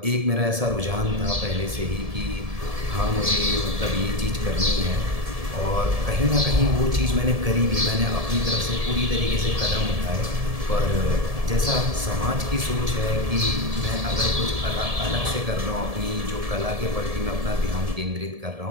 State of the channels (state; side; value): late; left; 1.7 ms